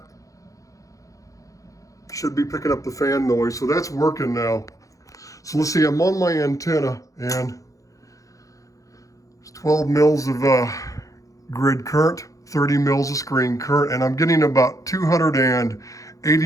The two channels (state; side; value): late; right; 0.16 ms